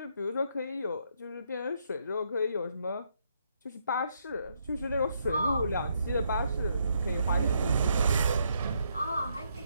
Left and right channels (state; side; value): inverted; both; correlation -0.75